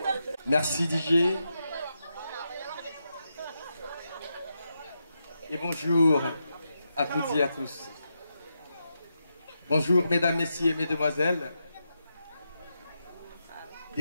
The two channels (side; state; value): both; inverted; correlation -0.86